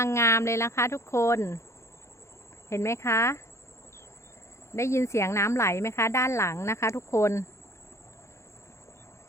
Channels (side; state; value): right; late; 0.14 ms